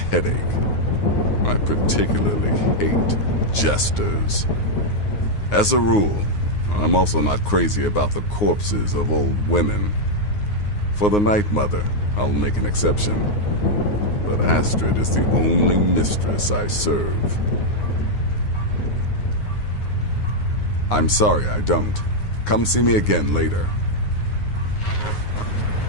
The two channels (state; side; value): late; right; 9.6 ms